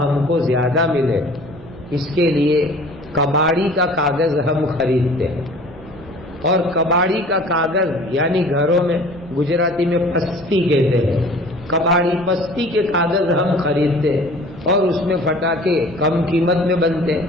ہم کو زیادہ ملے, اس کے لیے کباڑی کا کاغذ ہم خریدتے ہیں. اور کباڑی کا کاغذ یعنی گھروں میں گجراتی میں پستی کہتے ہیں, کباڑی پستی کے کاغذ ہم خریدتے ہیں اور اس میں پٹاخے کم قیمت میں بنتے ہیں,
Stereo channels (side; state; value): right; noise; rumble, 21 dB below the sound